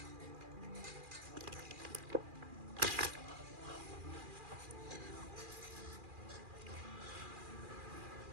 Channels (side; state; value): left; late; 2.4 ms